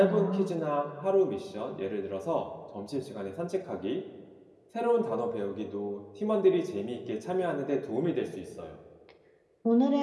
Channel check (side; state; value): both; identical; correlation 1.00